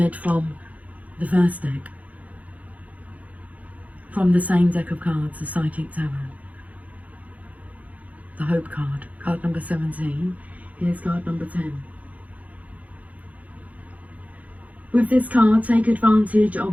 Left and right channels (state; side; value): late; left; 0.071 ms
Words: from the first deck. From the same deck of cards, the Psychic Tarot. The Hope card, card number 17. Here's card number 10. With this card, take advantage